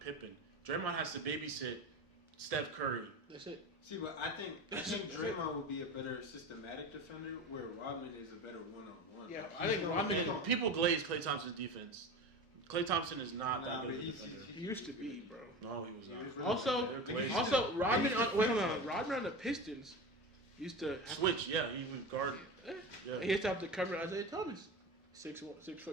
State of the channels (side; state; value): both; normal; correlation 0.28